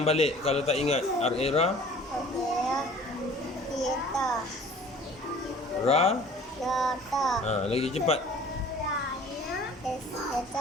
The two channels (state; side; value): normal; both; correlation 0.48